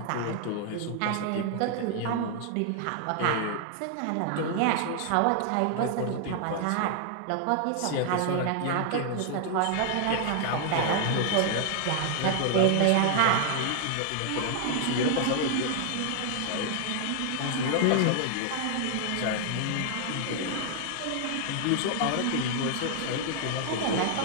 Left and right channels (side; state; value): both; different; correlation 0.00